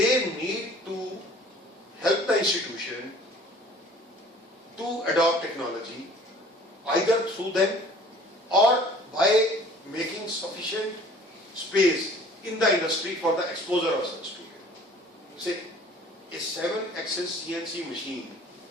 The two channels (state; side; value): normal; both; correlation 0.50